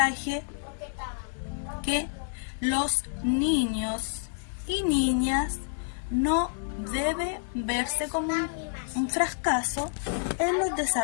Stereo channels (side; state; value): right; silent; digital silence